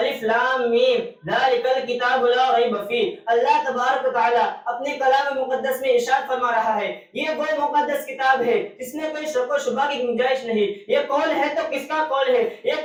لام میم ذالک الکتاب لا ریب فیہ. اللہ تبارک و تعالی اپنے کلام مقدس میں ارشاد فرما رہا ہے، یہ وہ مقدس کتاب ہے جس میں کوئی شک و شبہ کی گنجائش نہیں. یہ قول ہے تو کس کا قول ہے؟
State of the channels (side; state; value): both; identical; correlation 1.00